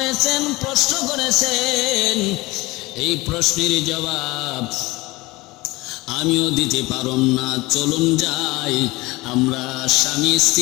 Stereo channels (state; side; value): quieter; right; 21.4 dB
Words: প্রশ্ন করেছেন, এই প্রশ্নের জবাব আমিও দিতে পারুম না। চলুন যাই, আমরা স্বামী